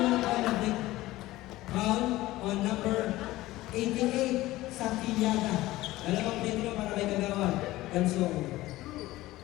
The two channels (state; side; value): quieter; right; 17.3 dB